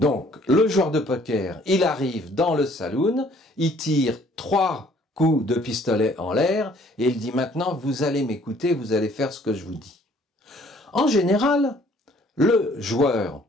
Donc, le joueur de poker, il arrive dans le saloon, il tire 3 coups de pistolet en l'air et il dit maintenant, vous allez m'écouter, vous allez faire ce que je vous dis. En général, le joueur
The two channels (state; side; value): normal; both; correlation 0.59